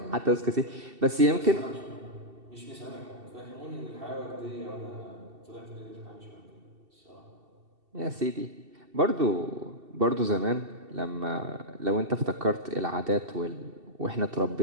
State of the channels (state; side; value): late; left; 2.7 ms